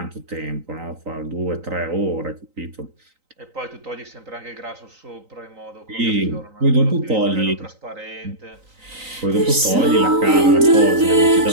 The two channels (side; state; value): left; late; 3.9 ms